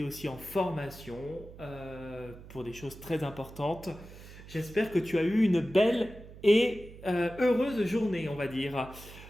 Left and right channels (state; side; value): noise; right; hum, 17 dB below the sound